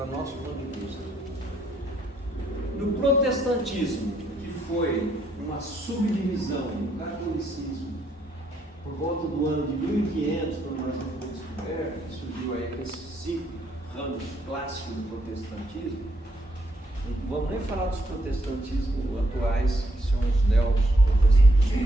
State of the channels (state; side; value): normal; both; correlation 0.73